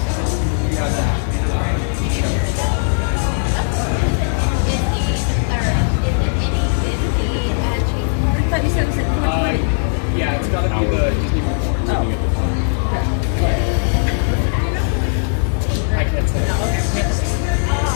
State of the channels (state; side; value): silent; right; digital silence